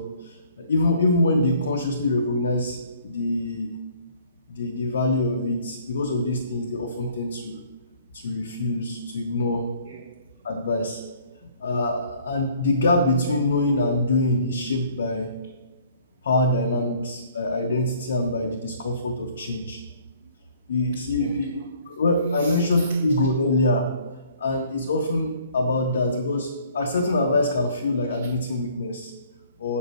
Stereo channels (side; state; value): both; inverted; correlation -0.58